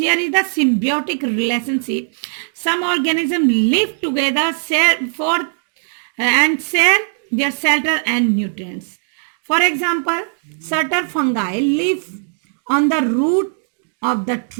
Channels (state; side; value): silent; left; digital silence